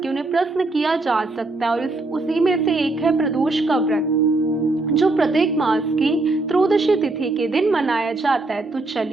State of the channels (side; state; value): left; quieter; 3.1 dB